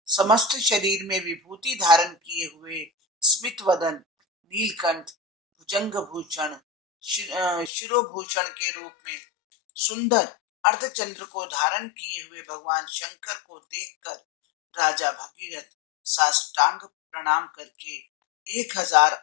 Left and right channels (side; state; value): right; drops out; at 7.7 s